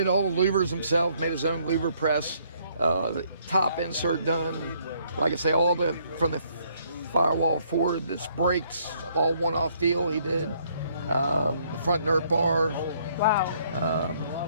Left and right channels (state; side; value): inverted; both; correlation -0.67